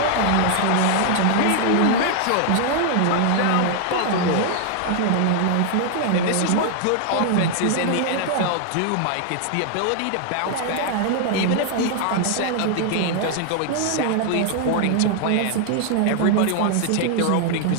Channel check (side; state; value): both; different; correlation 0.00